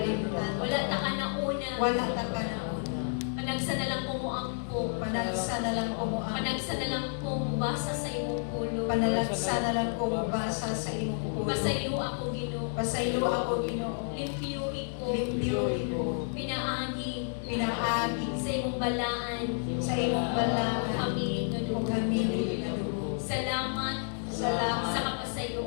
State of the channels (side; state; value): right; silent; digital silence